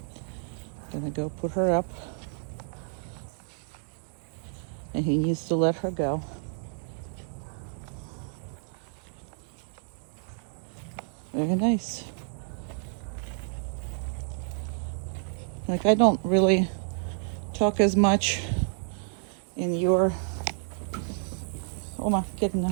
Gonna go put her up. And he needs to let her go. Very nice. Like, I don't really talk as much in your, Oma, get in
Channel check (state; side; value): silent; left; digital silence